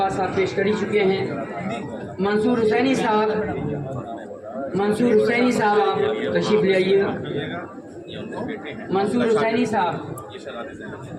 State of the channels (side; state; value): both; identical; correlation 1.00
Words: साहब पेश कर ही चुके हैं। मंसूर हुसैनी साहब, मंसूर हुसैनी साहब आप तशरीफ ले आइए। मंसूर हुसैनी साहब,